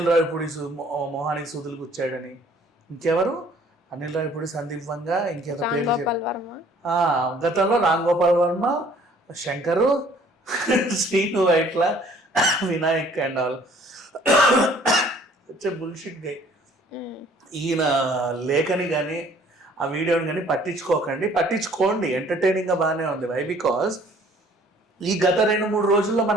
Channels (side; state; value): both; normal; correlation 0.57